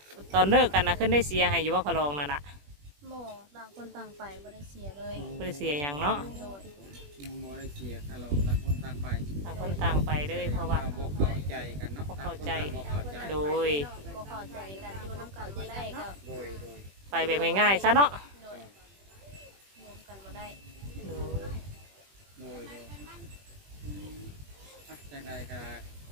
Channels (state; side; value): late; left; 21 ms